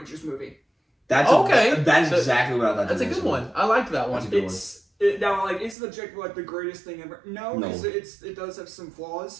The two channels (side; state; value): left; drops out; at 5.8 s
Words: movie. That's okay. That's exactly what I thought. That's a good one. I liked that one. That's a good Now, is the objective the greatest thing ever? No, No. because it does have some